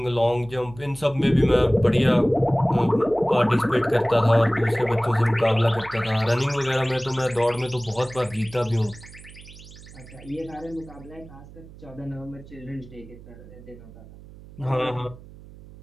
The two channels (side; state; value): right; noise; hum, 19 dB below the sound